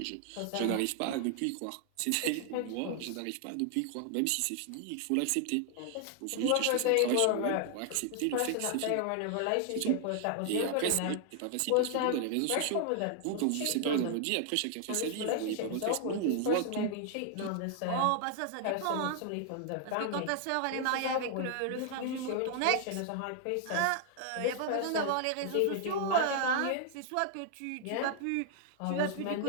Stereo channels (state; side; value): different; both; correlation 0.00